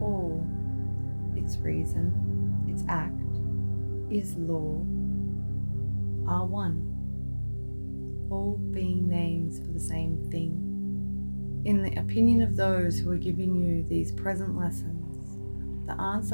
all, its reason, its act, is law, are one, all being names for the same thing. In the opinion of those who are giving you these present lessons, the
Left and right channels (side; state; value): both; inverted; correlation -1.00